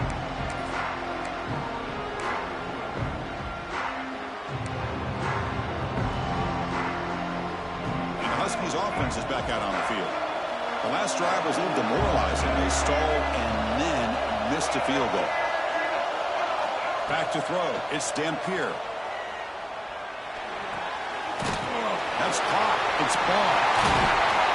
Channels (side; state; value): both; identical; correlation 1.00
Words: Huskies offense is back out on the field. The last drive was a little demoralizing. They stalled and then missed a field goal. Back to throw. It's Dampier. That's caught. It's ball.